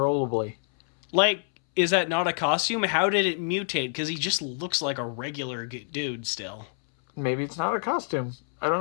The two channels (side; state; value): right; silent; 60 dB below the other